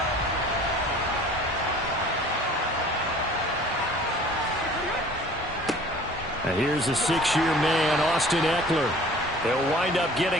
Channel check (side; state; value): both; normal; correlation 0.48